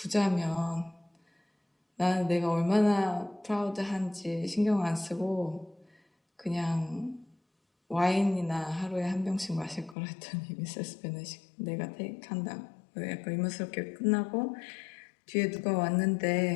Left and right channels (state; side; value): drops out; right; at 10.0 s